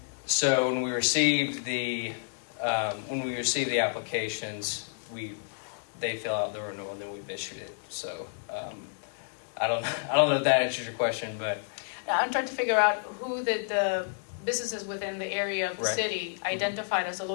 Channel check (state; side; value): silent; right; 58 dB below the other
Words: So when we received the applications, they fill out the renewal, and then we've issued it. So I don't know if that answers your question, but Now, I'm trying to figure out who the businesses within the area of the Right. city identified as a